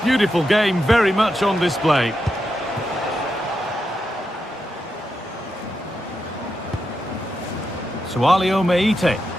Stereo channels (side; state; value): both; normal; correlation 0.86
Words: beautiful game very much on display. Sualio Meite.